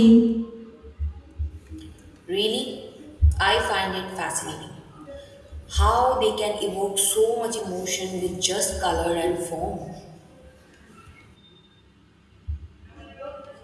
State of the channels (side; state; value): both; identical; correlation 1.00